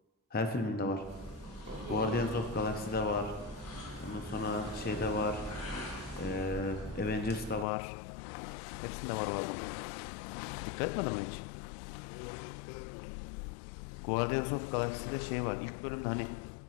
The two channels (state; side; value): drops out; right; at 7.7 s